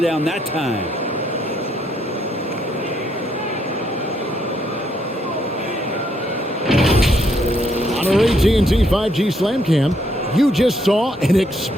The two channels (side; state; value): both; normal; correlation 0.73